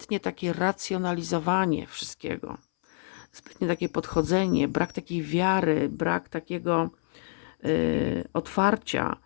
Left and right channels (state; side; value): silent; right; 60 dB below the other